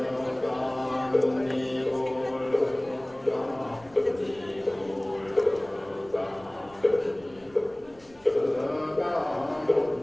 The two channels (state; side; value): noise; right; rumble, 27 dB below the sound